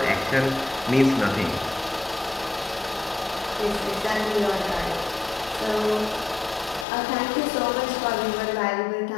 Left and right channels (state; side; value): drops out; right; at 6.9 s